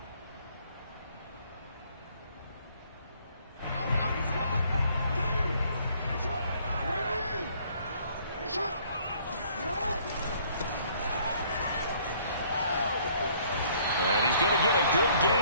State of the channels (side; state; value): both; inverted; correlation -0.61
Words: Going to get a good